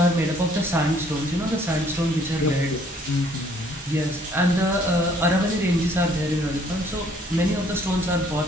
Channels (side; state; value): both; normal; correlation 0.62